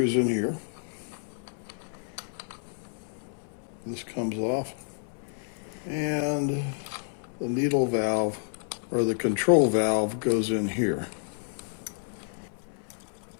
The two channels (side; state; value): right; silent; 58 dB below the other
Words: in here. This comes off, and the needle valve, or the control valve, goes in here.